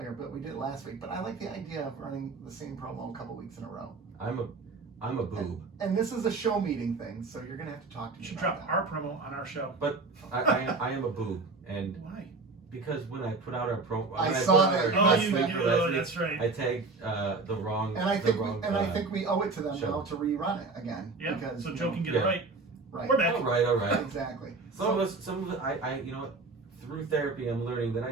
but we did it last week. But I like the idea of running the same promo a couple weeks in a row. I'm a boob. And this is a show meeting thing, so you're going to have to talk to You me should about drop that. our promo on our show. But I am a boob, and Why? because when I put out our promo, I when saw put out that. our Oh, last you- week you- for last week, that's right. I tagged the wrong. And I think the wrong, I think we owe it to them show. now to rerun it again. Yeah. Because, So you Joe know, can get Yeah. it right. right. We're back. All right. Exactly. Some of it, I you know what? Through therapy, I'm learning that I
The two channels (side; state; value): left; quieter; 3.9 dB